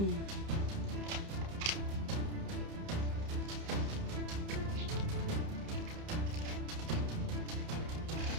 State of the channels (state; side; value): late; left; 30 ms